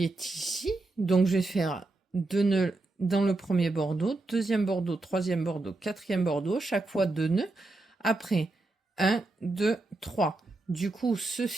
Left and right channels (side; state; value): left; quieter; 3.0 dB